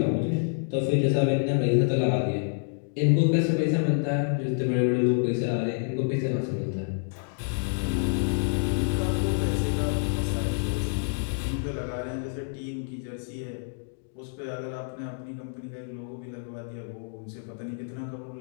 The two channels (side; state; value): right; silent; digital silence